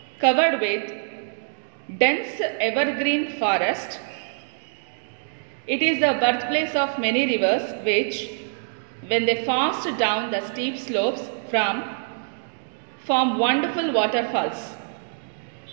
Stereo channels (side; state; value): left; silent; 62 dB below the other